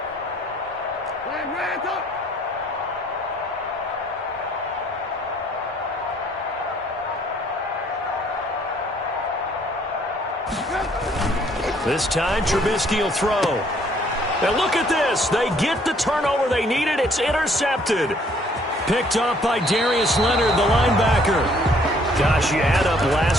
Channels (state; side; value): normal; both; correlation 0.62